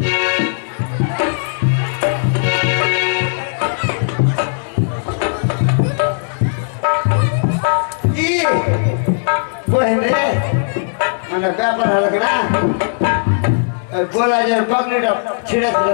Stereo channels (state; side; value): silent; right; digital silence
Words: বহেন রে মানে ব্যাপার হলো কি না গোলাজের পাগড়িটা ছিঁড়ে দিল